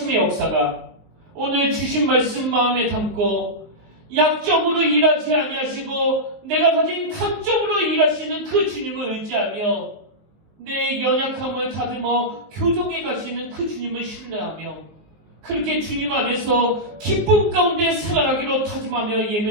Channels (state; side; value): late; left; 19 ms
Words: 역사가 오늘 주신 말씀 마음에 담고 약점으로 일하지 아니하시고 내가 가진 강점으로 일하시는 그 주님을 의지하며 내 연약함을 다듬어 교정해 가시는 그 주님을 신뢰하며 그렇게 주님 안에서 기쁨 가운데 살아가기로 다짐하며